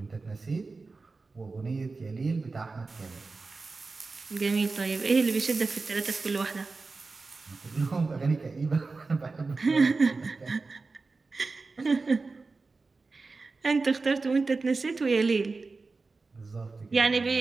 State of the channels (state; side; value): quieter; left; 3.9 dB